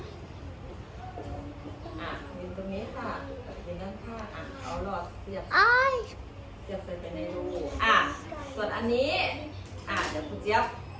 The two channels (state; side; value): identical; both; correlation 1.00